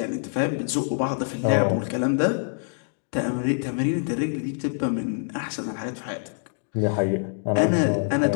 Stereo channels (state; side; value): silent; right; digital silence